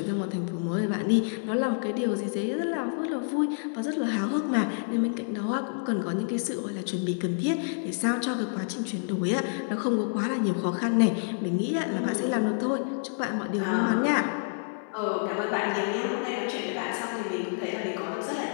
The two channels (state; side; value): silent; right; 59 dB below the other